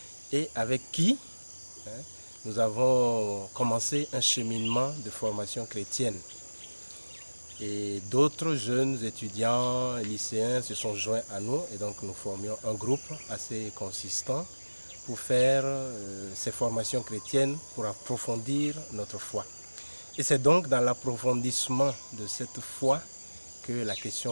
et avec qui nous avons commencé un cheminement de formation chrétienne. Et d'autres jeunes étudiants, lycéens se sont joints à nous et donc nous formions un groupe assez consistant pour faire ces formations chrétiennes, pour approfondir notre foi. Et c'est donc dans l'approfondissement de cette foi que la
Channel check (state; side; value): inverted; both; correlation -1.00